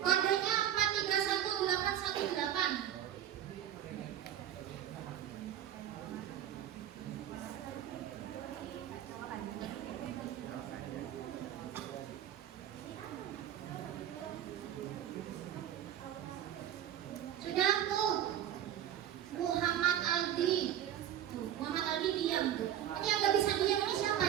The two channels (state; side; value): quieter; left; 10.9 dB